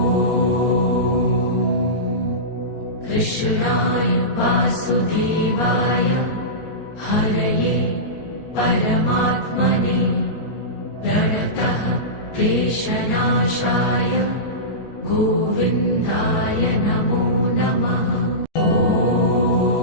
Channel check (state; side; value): late; right; 14 ms